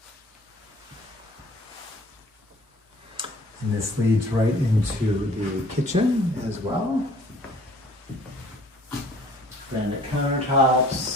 And this leads right into the kitchen as well. Granite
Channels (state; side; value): normal; both; correlation 0.53